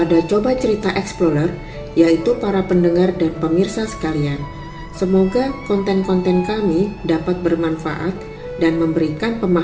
Coba Cerita Explorer, yaitu para pendengar dan pemirsa sekalian. Semoga konten-konten kami dapat bermanfaat dan memberikan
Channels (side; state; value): both; identical; correlation 1.00